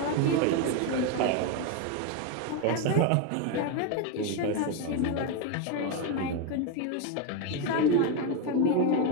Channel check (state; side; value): different; both; correlation 0.02